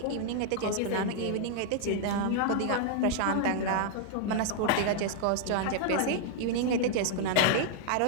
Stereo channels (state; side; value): different; both; correlation 0.00